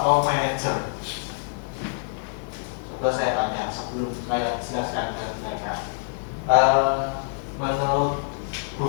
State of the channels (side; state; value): right; silent; 61 dB below the other